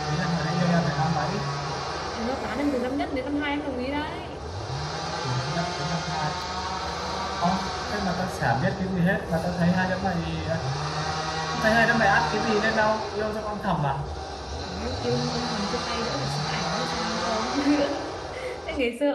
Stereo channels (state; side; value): identical; both; correlation 1.00